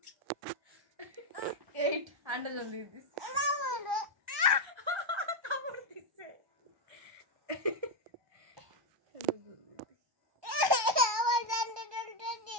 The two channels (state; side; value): late; left; 1.2 ms